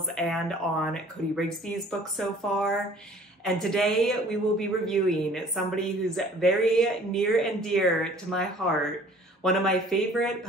and on Cody Rigsby's book so far. And today we will be reviewing somebody who's very near and dear to my heart. One of my favorite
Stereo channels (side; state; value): both; normal; correlation 0.52